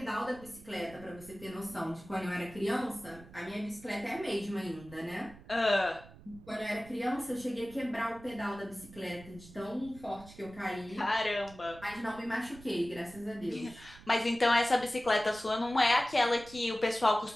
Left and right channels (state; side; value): noise; right; rumble, 19 dB below the sound